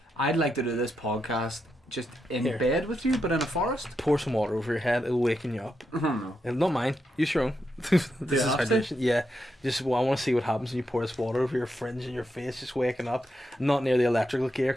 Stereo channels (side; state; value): both; normal; correlation 0.84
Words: I'd like to do this podcast just in Here. bed with you, but in a forest. Pour some water over your head; it'll waken you up. I don't know. Not mine. Use your own. This is have to? hydration. Yeah. Just I want to see what happens when you pour this water over your fringe and your face, just waking up. Not near the electrical gear